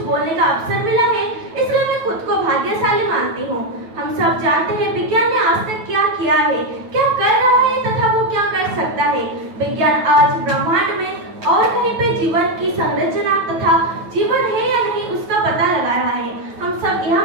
बोलने का अवसर मिला है, इसलिए मैं खुद को भाग्यशाली मानती हूँ। हम सब जानते हैं विज्ञान ने आज तक क्या किया है, क्या कर रहा है तथा वो क्या कर सकता है। विज्ञान आज ब्रह्मांड में और कहीं पे जीवन की संरचना तथा जीवन है या नहीं उसका पता लगा रहा है। हम सब यह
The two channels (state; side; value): late; left; 9.2 ms